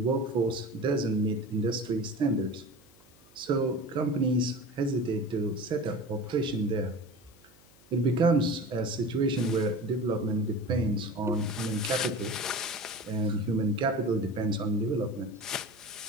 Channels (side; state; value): right; noise; hum, 30 dB below the sound